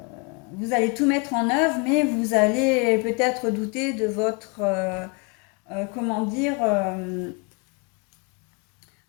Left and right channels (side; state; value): right; quieter; 32.2 dB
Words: vous allez tout mettre en œuvre, mais vous allez peut-être douter de votre, comment dire,